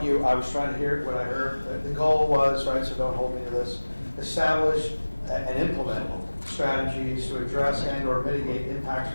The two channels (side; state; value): both; inverted; correlation -1.00